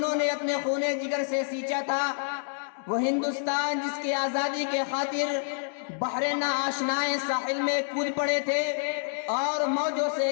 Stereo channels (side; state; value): right; silent; 59 dB below the other